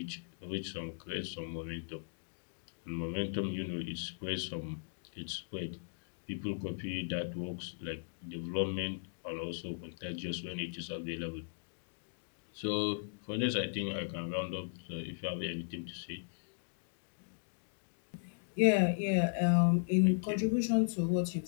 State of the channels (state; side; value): silent; right; digital silence